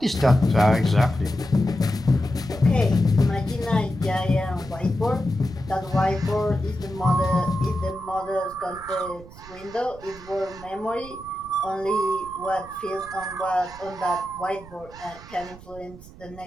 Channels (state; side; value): noise; right; rumble, 18 dB below the sound